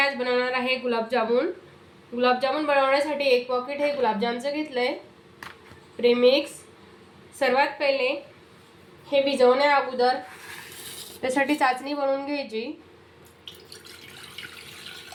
बनवणार आहे गुलाबजामुन। गुलाबजामुन बनवण्यासाठी एक पॉकेट हे गुलाबजामचं घेतलंय प्रेमिक्स। सर्वात पहिले हे भिजवण्या अगोदर त्यासाठी चाचणी बनवून घ्यायची।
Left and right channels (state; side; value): identical; both; correlation 1.00